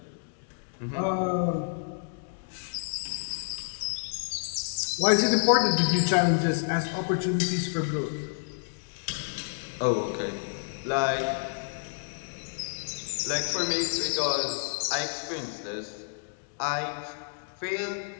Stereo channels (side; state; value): right; silent; digital silence